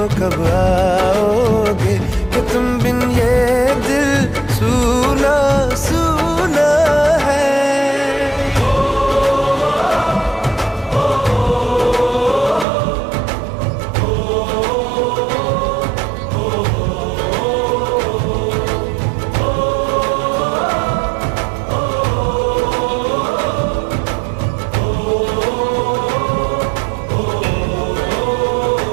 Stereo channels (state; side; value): drops out; left; at 12.7 s